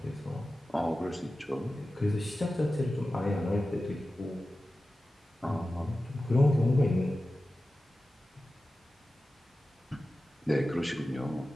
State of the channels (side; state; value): both; normal; correlation 0.94